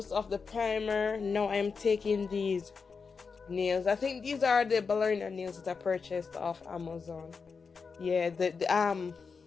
of the primer. Now I'm taking these nails. I think these are the ballerina nails that I purchased off Amazon. Yeah,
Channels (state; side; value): quieter; right; 5.2 dB